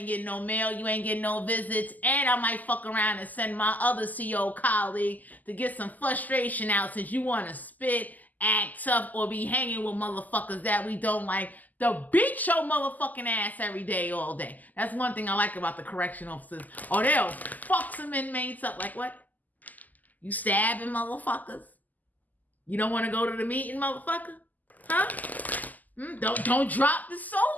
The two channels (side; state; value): right; late; 0.081 ms